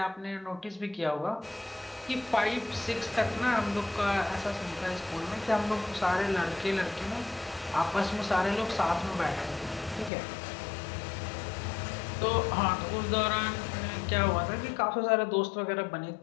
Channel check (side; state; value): right; drops out; at 10.1 s